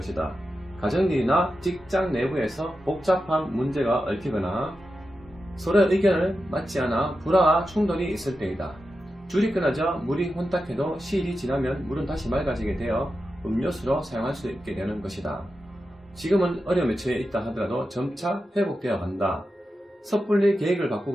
가정일이나 직장 내부에서 복잡한 문제가 얽히거나 서로의 의견을 맞지 않아 불화와 충돌이 있을 때이다. 줄이 끊어져 물이 혼탁해도 시일이 지나면 물은 다시 맑아지게 되어 음료수로 사용할 수 있게 되는 것이다. 지금은 어려움에 처해 있다 하더라도 점차 회복되어 간다. 섣불리 계획을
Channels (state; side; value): normal; both; correlation 0.90